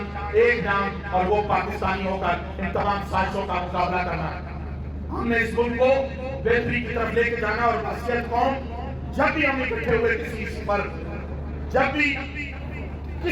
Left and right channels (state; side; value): identical; both; correlation 1.00